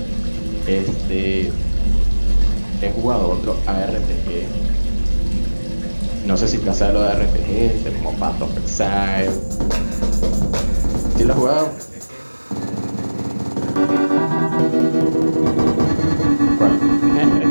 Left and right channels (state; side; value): inverted; both; correlation -1.00